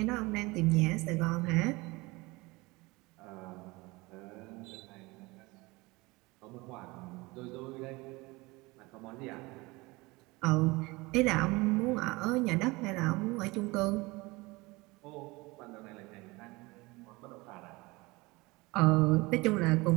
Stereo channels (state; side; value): quieter; left; 23.3 dB